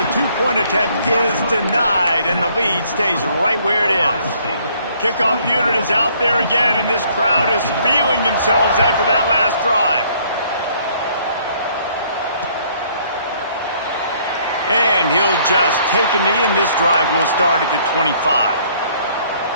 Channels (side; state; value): both; inverted; correlation -0.62